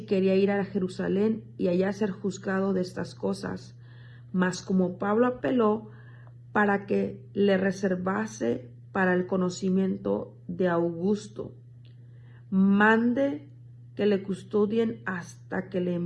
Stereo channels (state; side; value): identical; both; correlation 1.00